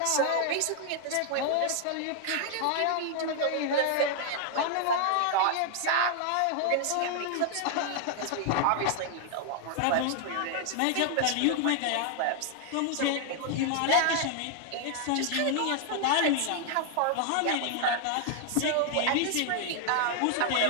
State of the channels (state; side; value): different; both; correlation 0.00